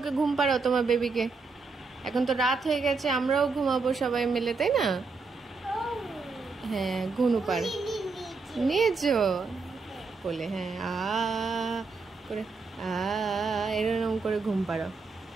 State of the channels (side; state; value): left; quieter; 4.4 dB